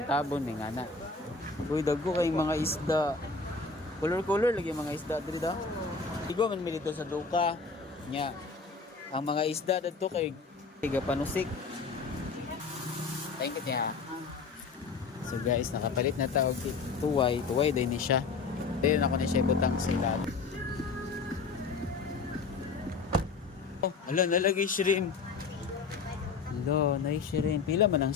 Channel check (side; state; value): right; quieter; 4.6 dB